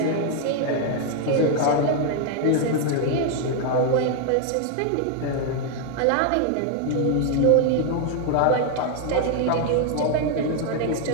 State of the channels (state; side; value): different; both; correlation 0.01